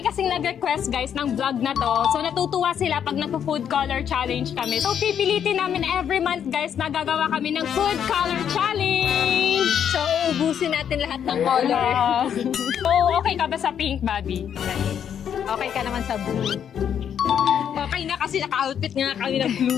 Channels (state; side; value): quieter; right; 8.7 dB